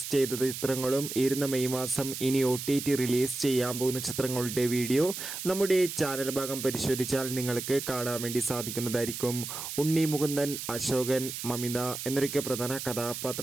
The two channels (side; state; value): right; noise; hiss, 7 dB below the sound